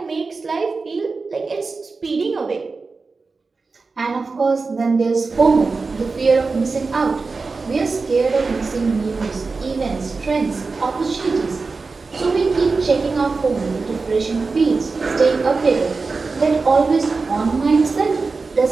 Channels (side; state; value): left; quieter; 4.2 dB